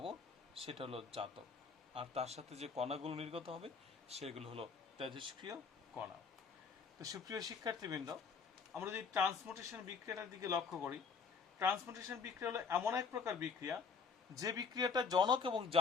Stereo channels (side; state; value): right; quieter; 5.5 dB